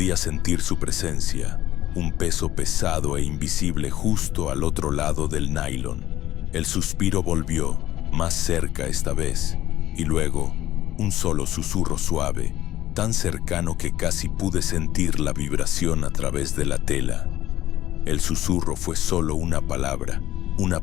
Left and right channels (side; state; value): right; quieter; 13.9 dB